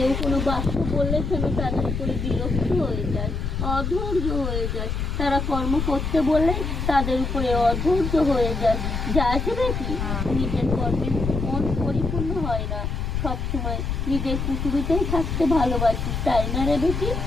কোনো বাক্য বললে যেন তাদের উপরে বিরক্ত হয়ে যায়, অধৈর্য হয়ে যায়, তারা কর্ম করতে বললে তাদের উপরে অধৈর্য হয়ে যায়, যাই দেখি। নিজের কর্মে মন পরিপূর্ণ হয় না, সবসময় নিজের কুটুরিতেই থাকতে ভালোবাসিস, তাই না রে বেটি?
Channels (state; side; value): noise; left; rumble, 2 dB below the sound